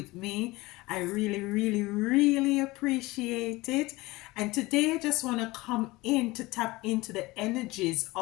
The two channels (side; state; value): right; quieter; 21.0 dB